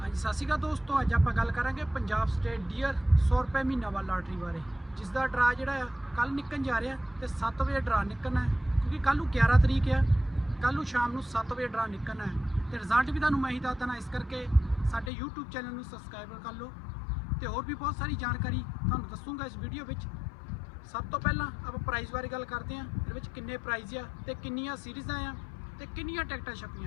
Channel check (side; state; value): right; drops out; at 15.1 s